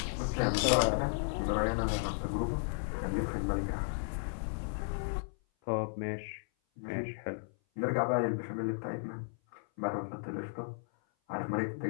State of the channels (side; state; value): right; silent; 55 dB below the other